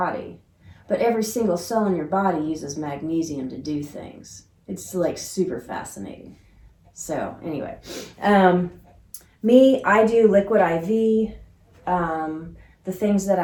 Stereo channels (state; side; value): identical; both; correlation 1.00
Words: But every single cell in your body uses magnesium to do things. It's like super fascinating. So anyway, I do liquid IV. The things that